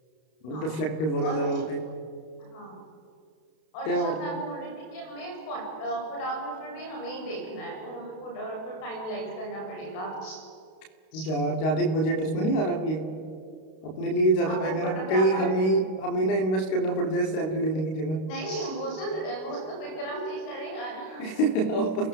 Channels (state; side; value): late; right; 32 ms